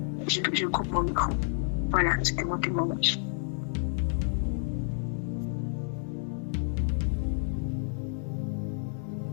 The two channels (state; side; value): silent; right; digital silence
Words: Je coupe mon micro. Voilà, c'était mon témoignage.